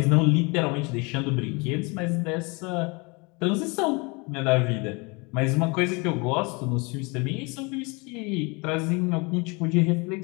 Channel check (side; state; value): right; quieter; 28.9 dB